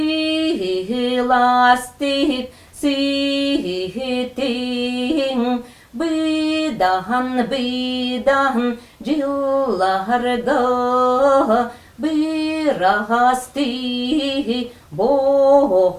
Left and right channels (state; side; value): identical; both; correlation 1.00